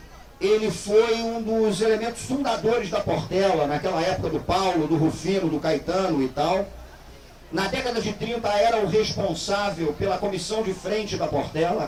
Ele foi um dos elementos fundadores da Portela, naquela época do Paulo, do Rufino, do Caetano e tal. Na década de 30 era o responsável pela comissão de frente da Portela, a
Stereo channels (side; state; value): both; identical; correlation 1.00